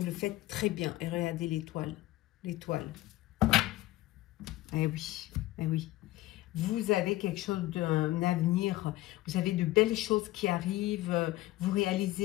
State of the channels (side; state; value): right; quieter; 17.2 dB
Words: le faites très bien. Et regardez l'étoile. L'étoile. Eh oui, eh oui. Vous avez quelque chose d'un avenir, vous avez de belles choses qui arrivent, vous